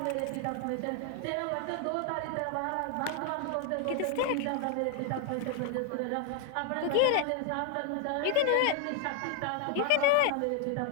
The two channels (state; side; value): different; both; correlation 0.00